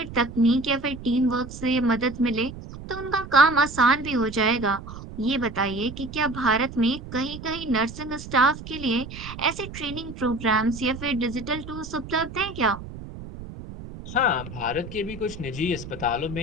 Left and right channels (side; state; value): right; noise; rumble, 12 dB below the sound